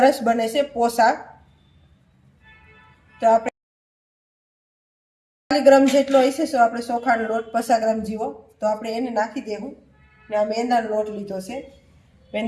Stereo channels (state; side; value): identical; both; correlation 1.00